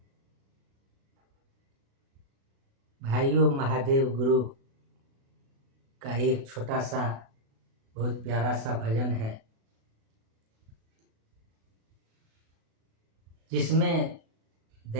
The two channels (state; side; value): late; left; 36 ms